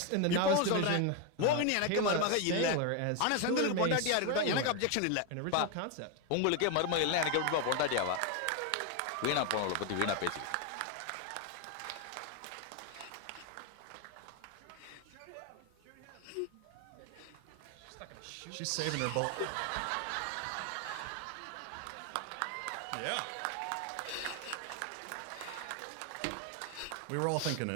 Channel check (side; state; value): both; different; correlation 0.01